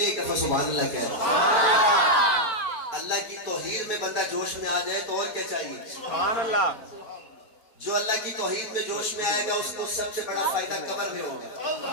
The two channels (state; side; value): late; right; 4.4 ms